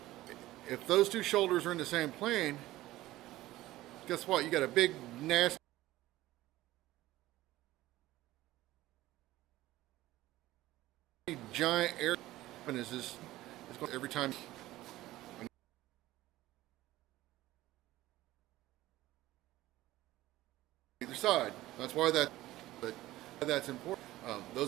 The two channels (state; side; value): quieter; left; 16.5 dB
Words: those two shoulders are in the same plane, guess what? You got a big, nasty, giant air, and is this, it's going every time. Either side. That's why that's important.